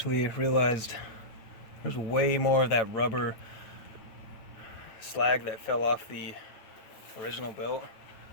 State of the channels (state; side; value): late; right; 9.0 ms